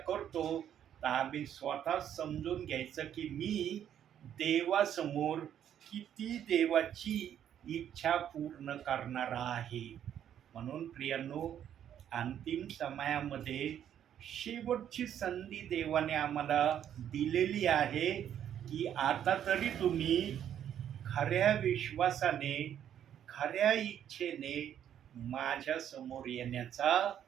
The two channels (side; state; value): left; quieter; 9.9 dB